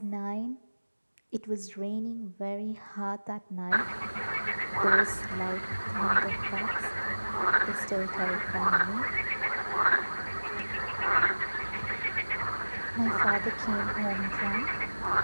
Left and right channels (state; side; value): inverted; both; correlation -1.00